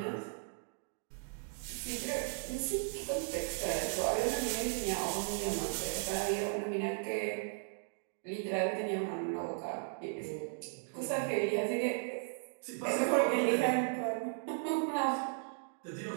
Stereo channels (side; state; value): left; silent; digital silence